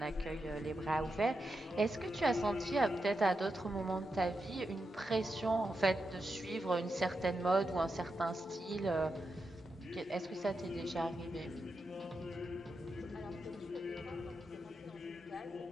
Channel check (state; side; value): normal; both; correlation 0.87